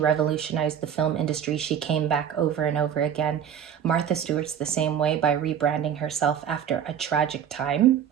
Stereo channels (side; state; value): left; quieter; 8.9 dB